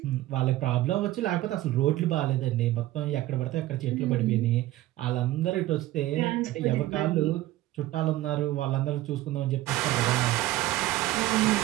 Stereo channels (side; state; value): left; quieter; 15.7 dB